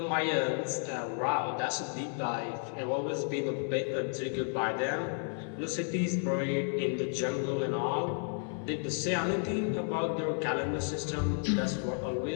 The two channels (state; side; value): silent; right; 56 dB below the other